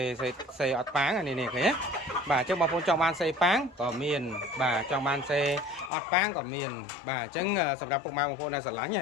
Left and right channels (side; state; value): right; drops out; at 5.9 s